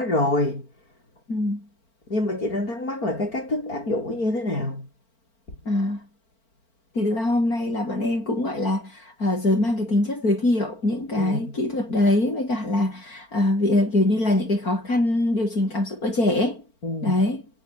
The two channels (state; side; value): late; right; 4.4 ms